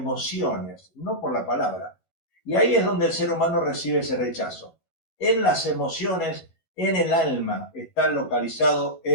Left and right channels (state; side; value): late; right; 12 ms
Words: no por la palabra. Y ahí es donde el ser humano recibe ese rechazo. En las emociones, en el alma, está localizado